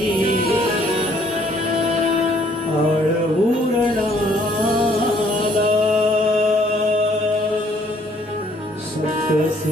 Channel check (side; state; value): both; normal; correlation 0.63